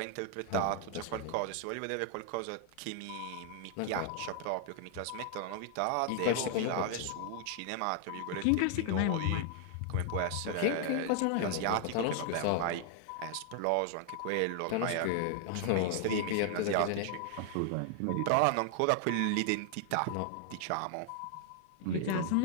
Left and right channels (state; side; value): different; both; correlation 0.00